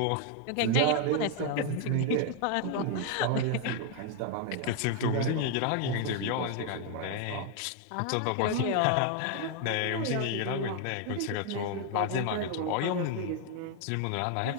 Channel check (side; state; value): both; different; correlation 0.00